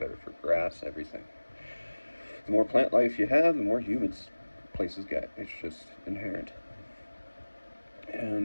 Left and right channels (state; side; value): inverted; both; correlation -1.00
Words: for grass, everything. The more plant life you have, the more humid places get. It's just inherent.